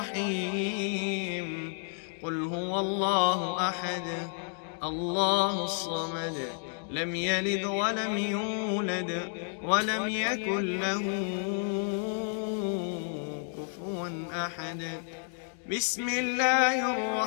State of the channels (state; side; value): silent; right; 55 dB below the other